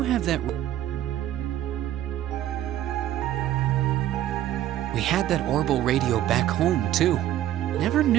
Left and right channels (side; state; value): left; quieter; 12.6 dB